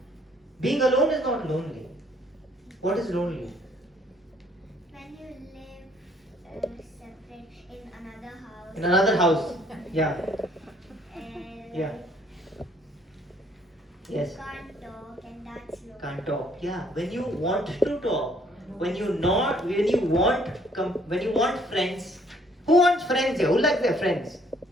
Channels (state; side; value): normal; both; correlation 0.63